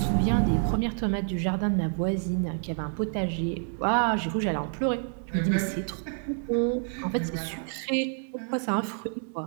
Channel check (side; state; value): left; silent; 59 dB below the other